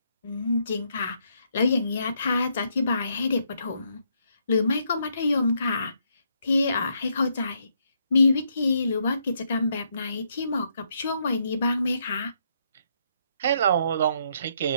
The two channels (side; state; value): both; inverted; correlation -0.75